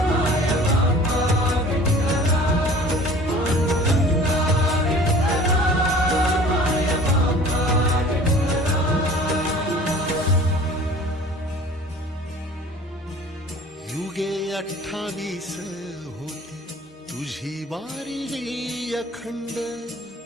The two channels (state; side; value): normal; both; correlation 0.46